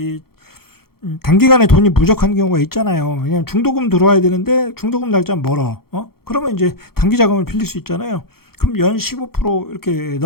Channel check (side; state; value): right; late; 0.94 ms